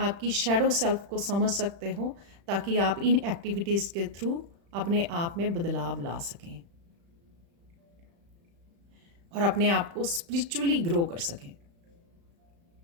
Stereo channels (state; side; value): late; left; 35 ms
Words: की शेडो सेल्फ को समझ सकते हो, ताकि आप इन एक्टिविटीज़ के थ्रू अपने आप में बदलाव ला सकें और अपने आप को स्पिरिचुअली ग्रो कर सकें।